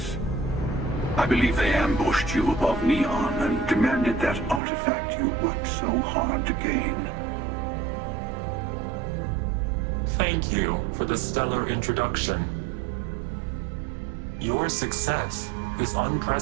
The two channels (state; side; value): drops out; left; at 4.6 s